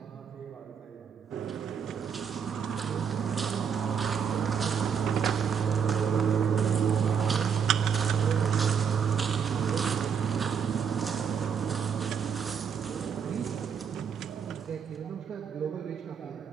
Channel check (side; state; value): left; quieter; 7.1 dB